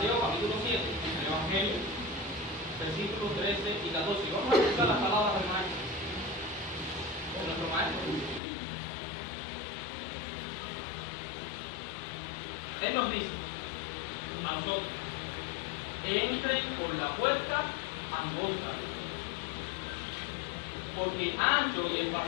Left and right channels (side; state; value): right; drops out; at 8.4 s